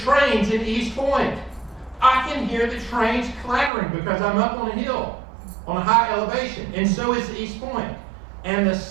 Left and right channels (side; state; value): left; drops out; at 3.7 s